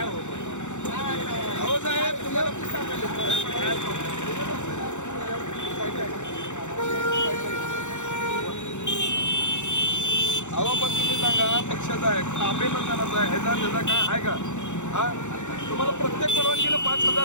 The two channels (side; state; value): right; late; 0.84 ms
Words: हो साहेब तुम्हाला अहो पण तुम्ही सांगा पक्षाचा आहे अभिनंदनाचा आहे ह्याचा त्याचा काय आहे का? हा तुम्हाला प्रत्येक परवानगीला